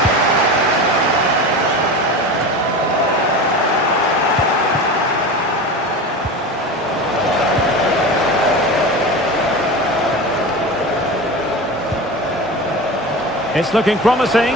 It's looking promising,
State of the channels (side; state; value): both; normal; correlation 0.29